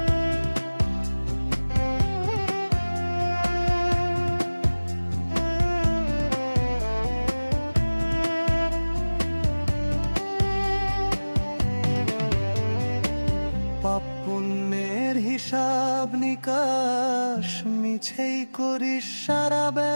পুণ্যের হিসাব নিকাশ মিছেই করিস সারা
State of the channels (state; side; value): inverted; both; correlation -1.00